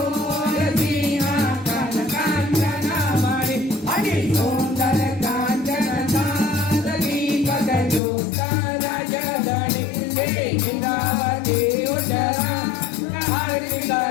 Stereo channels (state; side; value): drops out; right; at 8.0 s